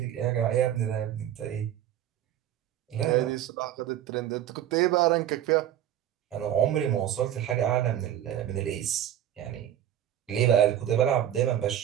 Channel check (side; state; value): left; quieter; 11.2 dB